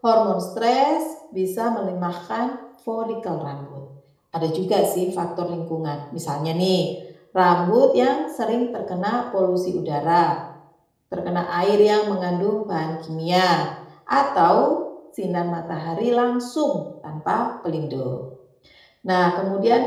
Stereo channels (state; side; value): identical; both; correlation 1.00